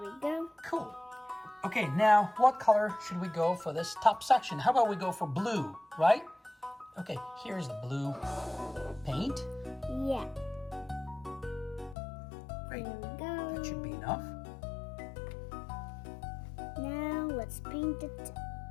go. Cool. Okay, now what color should we go for this top section? How about we go for blue, right? Okay, here's the blue paint. Yeah. Great. There we go. That should be enough. Now let's paint it.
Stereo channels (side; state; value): right; drops out; at 12.0 s